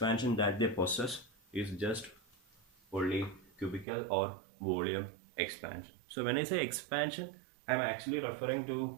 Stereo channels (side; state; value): left; drops out; at 3.9 s